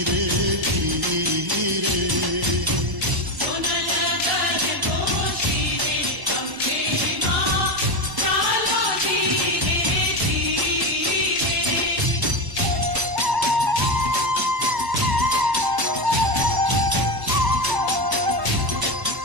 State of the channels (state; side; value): late; left; 1.1 ms